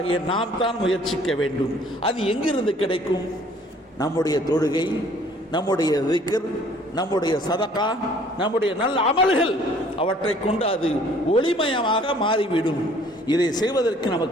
நாம் தான் முயற்சிக்க வேண்டும். அது எங்கிருந்து கிடைக்கும்? நம்முடைய தொழுகை, நம்முடைய திக்ர், நம்முடைய சதகா, நம்முடைய நல்ல அமல்கள், அவற்றை கொண்டு அது ஒளிமயமாக மாறிவிடும். இதை செய்வதற்கு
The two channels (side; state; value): both; normal; correlation 0.56